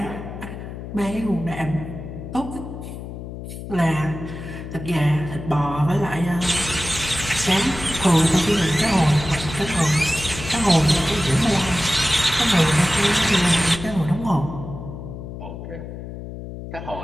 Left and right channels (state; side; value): noise; left; hum, 10 dB below the sound